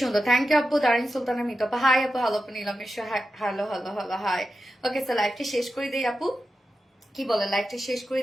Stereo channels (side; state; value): both; normal; correlation 0.90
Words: থ্যাংক ইউ আপু। দারিন সুলতানা মিত আপু, হাই আপু। হ্যালো আপু, Nilam Mishra, hello hello hello, hi. Okay sir, লাইভটা শেষ করে দিই আপু, কি বলেন? লাইভটা শেষ করে